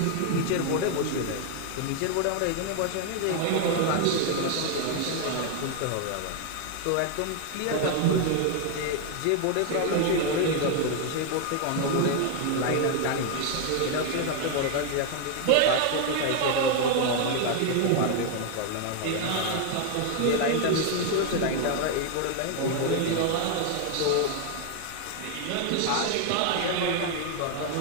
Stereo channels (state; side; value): different; both; correlation 0.00